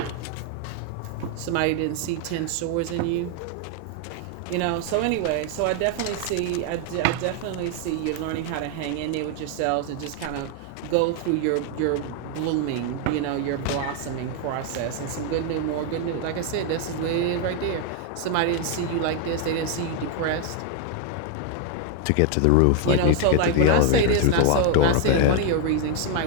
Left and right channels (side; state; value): both; different; correlation 0.00